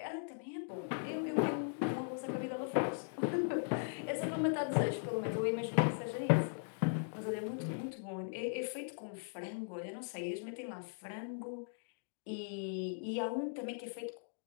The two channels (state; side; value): silent; right; digital silence